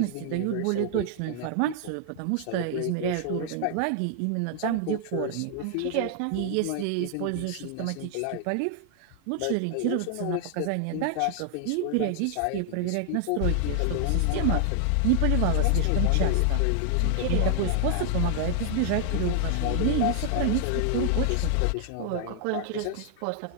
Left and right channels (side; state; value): both; different; correlation 0.00